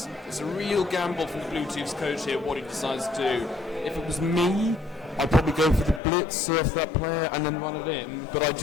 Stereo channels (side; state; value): right; drops out; at 6.0 s